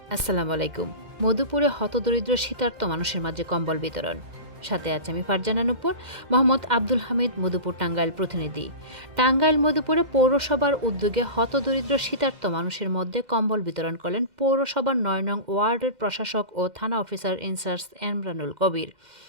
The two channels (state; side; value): late; left; 2.1 ms